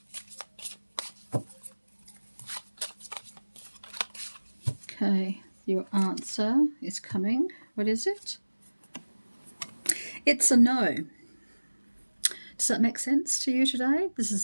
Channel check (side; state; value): both; inverted; correlation -1.00